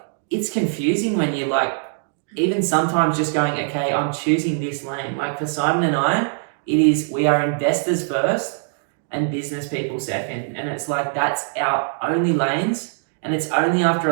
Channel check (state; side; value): silent; left; 61 dB below the other